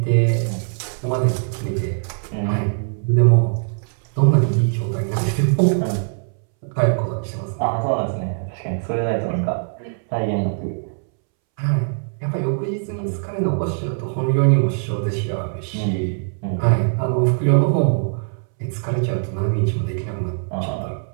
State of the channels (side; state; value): left; silent; 65 dB below the other